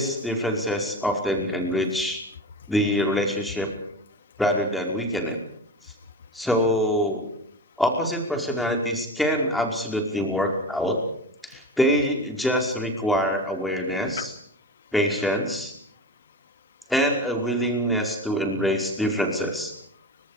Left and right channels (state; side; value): normal; both; correlation 0.26